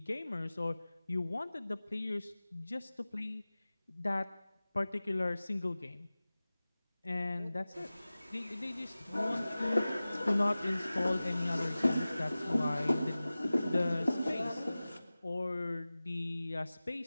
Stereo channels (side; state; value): both; inverted; correlation -0.98